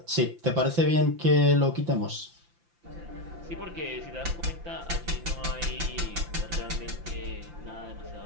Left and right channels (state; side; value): late; left; 5.8 ms